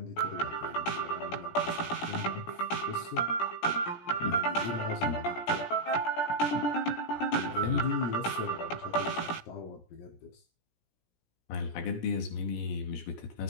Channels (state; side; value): late; right; 17 ms